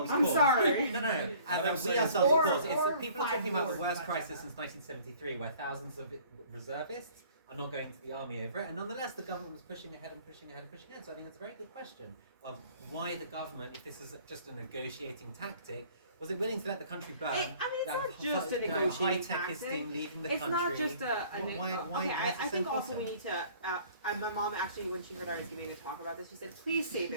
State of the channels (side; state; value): both; inverted; correlation -0.53